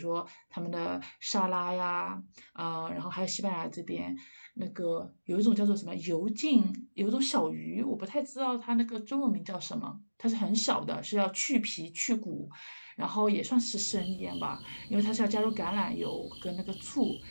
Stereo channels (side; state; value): both; inverted; correlation -1.00